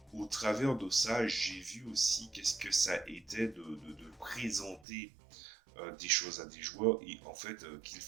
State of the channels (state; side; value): drops out; left; at 4.9 s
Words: au travers de ça, j'ai vu aussi qu'est-ce que ça était de présenter des choses à des joueurs et en fait qu'ils